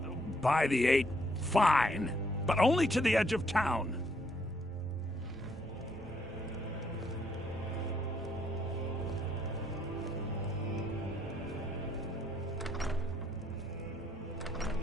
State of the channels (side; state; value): both; normal; correlation 0.70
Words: by the 8, fine. But only to the edge of town.